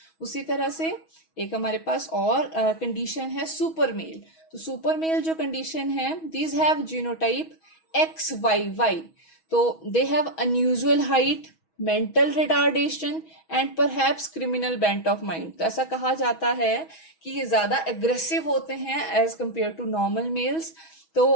उसी तरह से एक हमारे पास और condition है super male। तो super male जो condition है these have genotype XYY। तो they have unusual height, mental retardation and perhaps criminal bent of mind। तो ऐसा कहा जाता है कि ये ज्यादा aggressive होते हैं as compared to normal males।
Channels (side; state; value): right; late; 6.2 ms